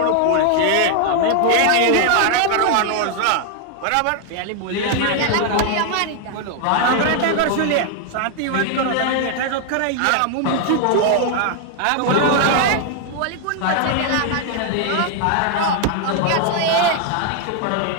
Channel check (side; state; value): both; different; correlation 0.00